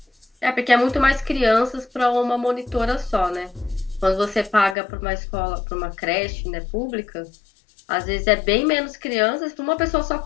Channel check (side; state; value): right; drops out; at 4.8 s